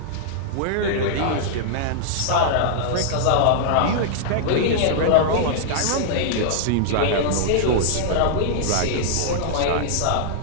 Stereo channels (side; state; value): both; different; correlation -0.01